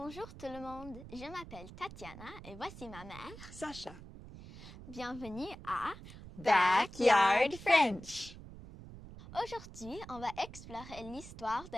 tout le monde, je m'appelle Tatiana et voici ma mère, Sacha. Bienvenue à Backyard French. Aujourd'hui, on va explorer l'histoire de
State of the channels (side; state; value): right; noise; rumble, 15 dB below the sound